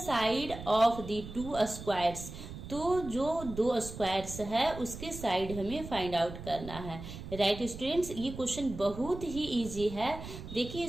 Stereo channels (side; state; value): right; noise; rumble, 11 dB below the sound